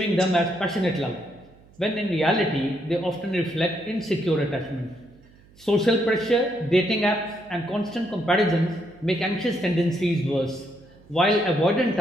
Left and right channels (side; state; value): right; noise; hum, 27 dB below the sound